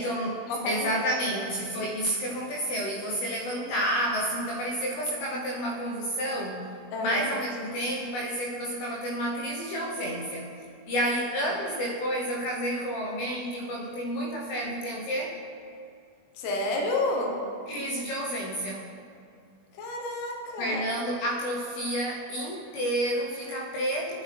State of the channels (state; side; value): late; right; 20 ms